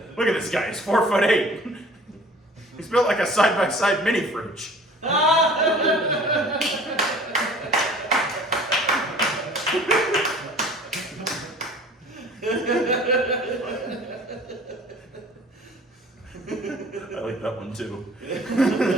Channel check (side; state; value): both; normal; correlation 0.48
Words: at this guy, he's 4'8". He's built like a side-by-side mini fridge. I like that one too.